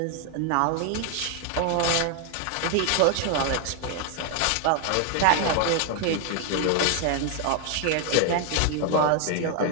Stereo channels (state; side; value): different; both; correlation 0.01